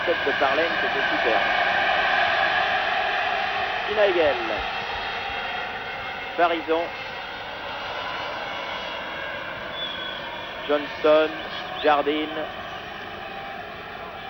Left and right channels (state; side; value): identical; both; correlation 1.00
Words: tête de Farlane, c'était super. Nigel. Farison. Johnston. Jardine.